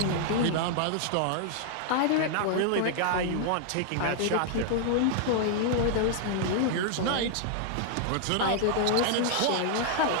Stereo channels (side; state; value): both; different; correlation -0.01